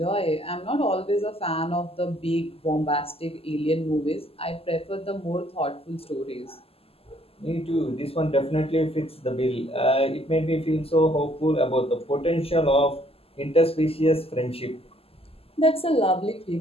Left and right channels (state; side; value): late; right; 0.28 ms